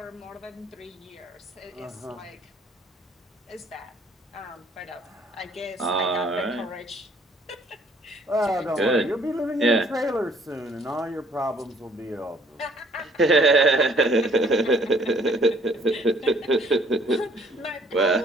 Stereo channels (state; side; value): normal; both; correlation 0.61